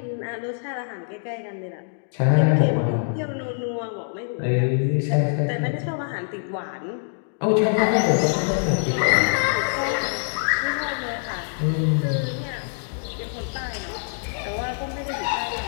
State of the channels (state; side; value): silent; right; digital silence